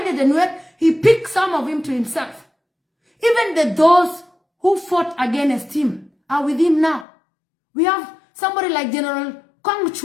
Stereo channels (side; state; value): right; drops out; at 7.1 s